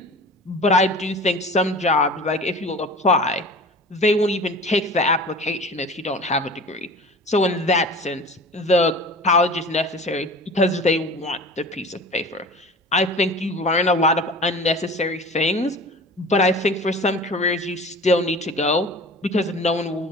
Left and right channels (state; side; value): normal; both; correlation 0.39